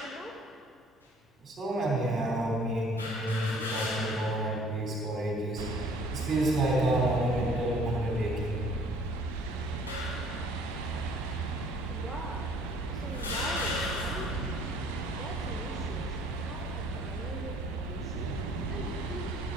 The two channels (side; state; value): both; normal; correlation 0.55